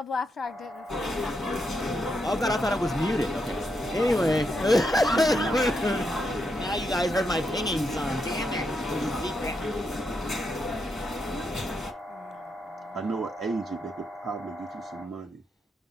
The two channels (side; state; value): both; normal; correlation 0.82